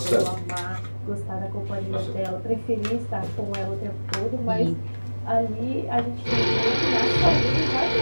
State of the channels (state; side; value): inverted; both; correlation -1.00